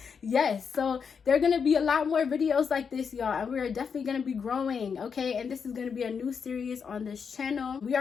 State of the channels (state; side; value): quieter; right; 6.3 dB